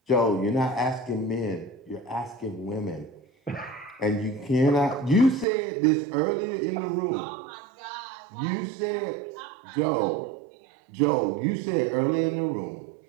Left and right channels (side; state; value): left; drops out; at 5.5 s